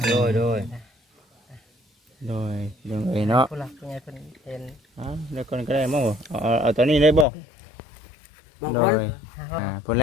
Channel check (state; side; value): drops out; right; at 7.2 s